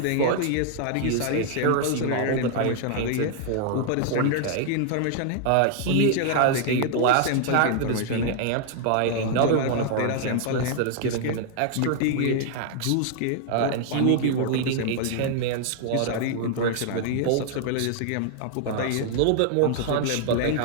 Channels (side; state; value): both; different; correlation 0.00